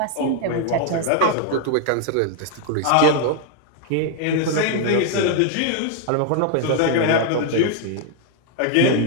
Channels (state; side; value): different; both; correlation 0.00